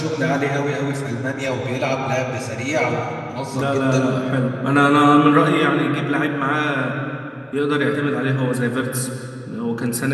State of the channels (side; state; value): both; identical; correlation 1.00